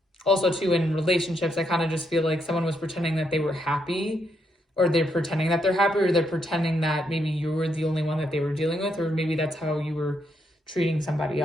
too, in relationships, I kind of just feel like someone was pretending that they were happy, or they're pretending that they're happy, or they're pretending that maybe you were the only one that they were dealing with, or maybe that's how you were treating somebody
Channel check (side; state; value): both; normal; correlation 0.78